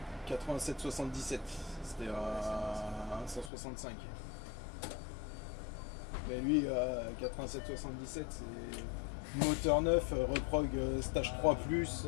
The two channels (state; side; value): drops out; right; at 3.5 s